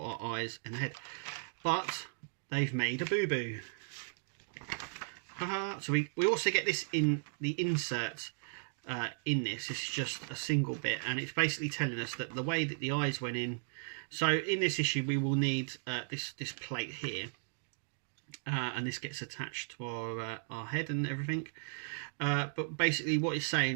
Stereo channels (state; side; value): silent; left; digital silence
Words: our eyes and head, but they've made a boo-boo. So we also get this in the insert in this. It's just a single bit, and it's basically telling us that the way that the eyes went in. So in this issue we will need this plate here, and this gets attached to our head and everything. But basically what it's